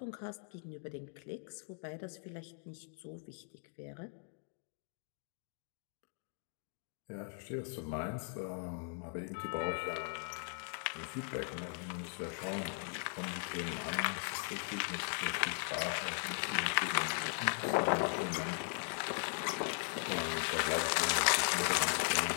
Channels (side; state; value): right; silent; 52 dB below the other